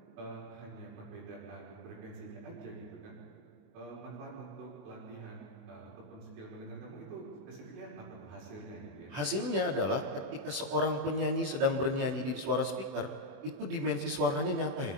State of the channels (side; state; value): left; late; 24 ms